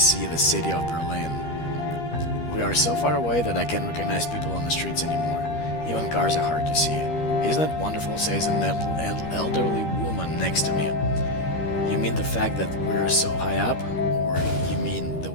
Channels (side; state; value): right; late; 13 ms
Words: the city of Berlin. We are so far away that I can't recognize people on the streets anymore. Even cars are hard to see. Isn't it wonderful, says an elderly woman next to me. You mean the fact that we're so high up? Or you mean the